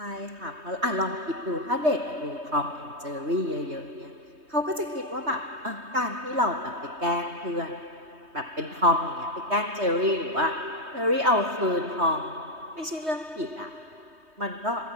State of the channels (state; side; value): late; left; 3.2 ms